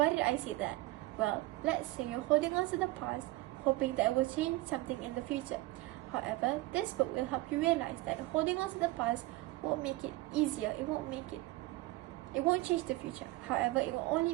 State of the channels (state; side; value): quieter; left; 19.9 dB